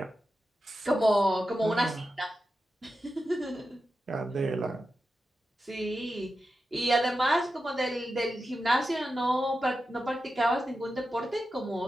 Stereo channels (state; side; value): normal; both; correlation 0.91